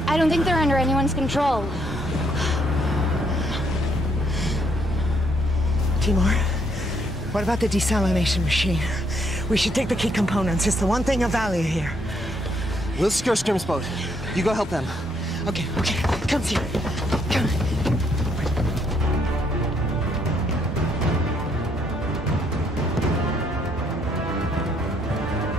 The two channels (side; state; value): both; normal; correlation 0.71